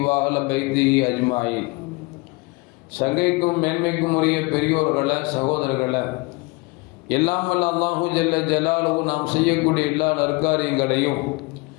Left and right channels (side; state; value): right; quieter; 26.4 dB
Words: وأهل بيته أجمعين. சங்கைக்கும் மேன்மைக்கும் உரிய பெரியோர்களே, சகோதரர்களே, எல்லாம் வல்ல அல்லாஹு ஜல்ல ஜலாலுஹு நாம் செய்யக்கூடிய எல்லா நற்காரியங்களையும்